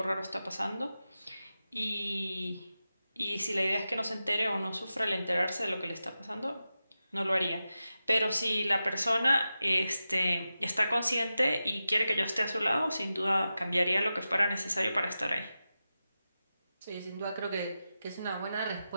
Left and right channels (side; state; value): both; inverted; correlation -0.92